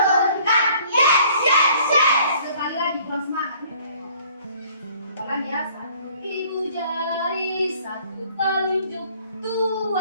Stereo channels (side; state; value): both; inverted; correlation -0.57